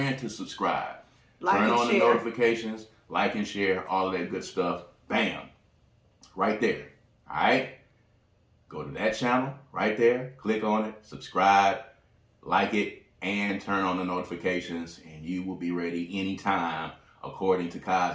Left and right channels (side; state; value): both; identical; correlation 1.00